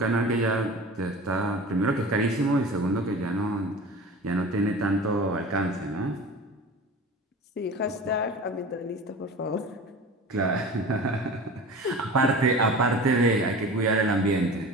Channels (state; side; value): normal; both; correlation 0.36